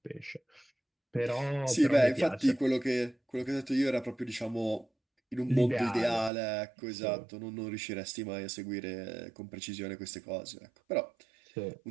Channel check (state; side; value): drops out; left; at 6.3 s